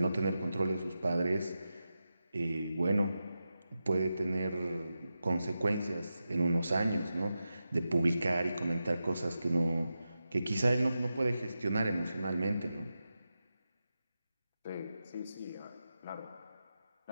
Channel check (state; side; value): inverted; both; correlation -0.91